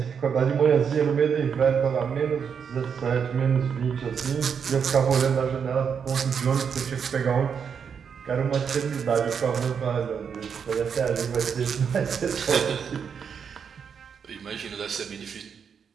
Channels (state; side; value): quieter; left; 6.9 dB